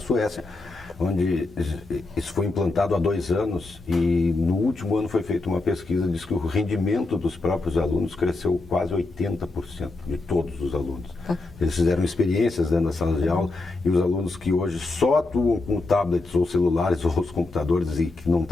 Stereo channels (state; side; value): quieter; right; 3.2 dB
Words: onde isso foi implantado há 2 anos e no último ano foi feita uma pesquisa, diz que o rendimento dos próprios alunos cresceu quase 80% de todos os alunos. Eles fizeram experiências dentro das salas de aula e os alunos que hoje só atuam com tablets ou celulares ou os computadores e que não